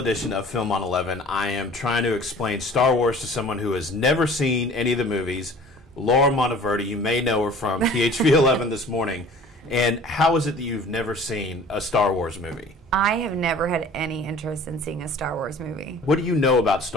of Film on 11, I am trying to explain Star Wars to someone who has never seen any of the movies. Laura Monteverdi, you may know her from PHV 11 this morning. And how is it that you've never seen a Star Wars movie? I have never had any interest in seeing a Star Wars movie. What do you know about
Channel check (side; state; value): both; normal; correlation 0.46